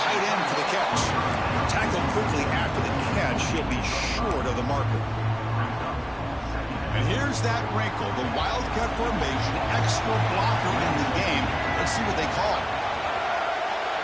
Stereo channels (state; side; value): identical; both; correlation 1.00